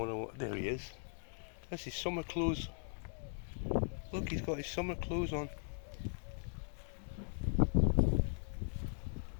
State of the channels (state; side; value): silent; right; 52 dB below the other